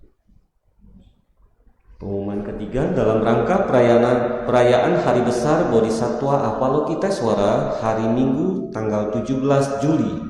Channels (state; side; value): identical; both; correlation 1.00